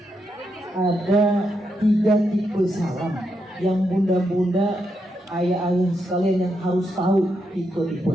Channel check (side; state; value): both; normal; correlation 0.82